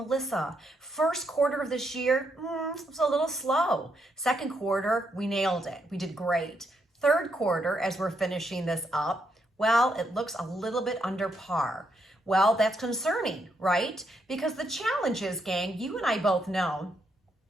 first quarter of this year was a little slow. Second quarter, we nailed it. We did great. Third quarter, as we're finishing this up, well, it looks a little bit under par. Well, that's concerning, right? Because the challenge is, gang, you and I both know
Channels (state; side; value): normal; both; correlation 0.78